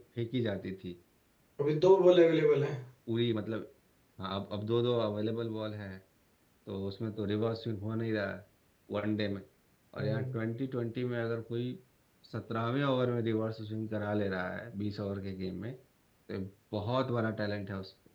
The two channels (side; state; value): both; identical; correlation 1.00